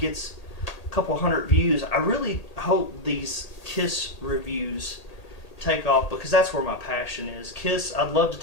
a couple hundred views, I really hope these Kiss reviews take off, because that's where my passion is. Kiss, I'd love to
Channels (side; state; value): right; late; 1.8 ms